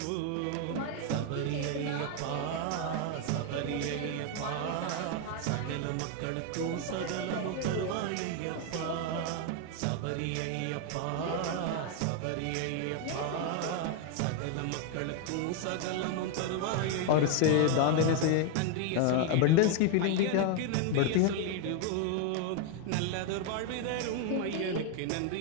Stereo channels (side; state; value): both; different; correlation 0.01